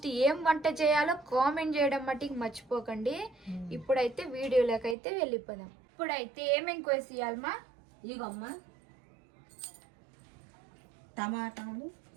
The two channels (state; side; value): drops out; left; at 5.0 s